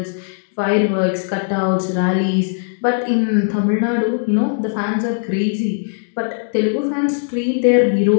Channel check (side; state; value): right; silent; digital silence